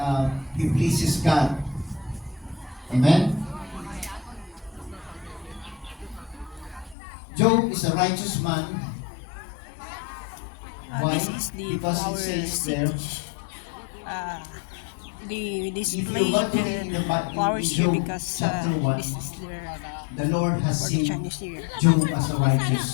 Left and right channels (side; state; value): right; drops out; at 7.0 s